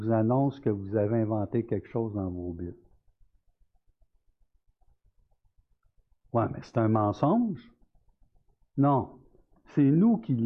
annonce que vous avez inventé quelque chose dans vos Bibles. Oui, mais c'est un mensonge. Non, c'est nous qui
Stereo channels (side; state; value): both; identical; correlation 1.00